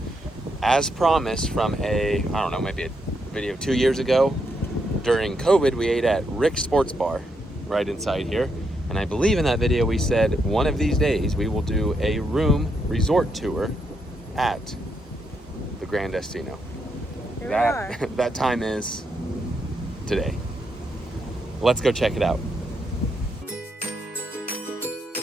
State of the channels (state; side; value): normal; both; correlation 0.80